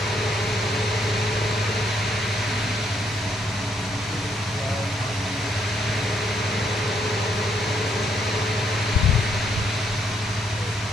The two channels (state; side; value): normal; both; correlation 0.73